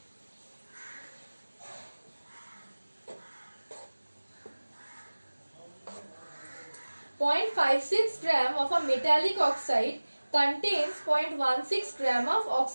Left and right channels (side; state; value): both; inverted; correlation -1.00